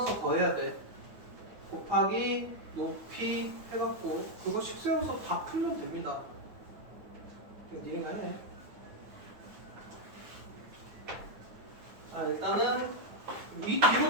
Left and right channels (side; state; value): left; late; 9.4 ms